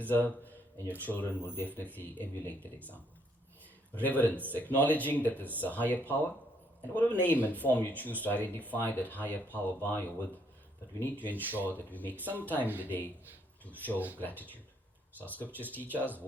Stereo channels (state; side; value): normal; both; correlation 0.70